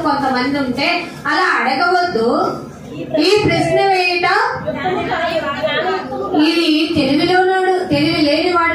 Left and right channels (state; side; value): identical; both; correlation 1.00